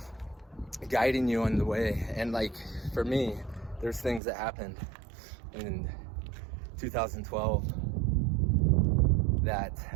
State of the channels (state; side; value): drops out; left; at 4.2 s